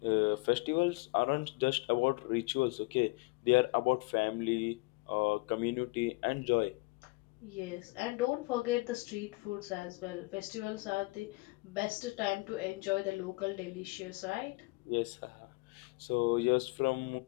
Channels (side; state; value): right; quieter; 24.9 dB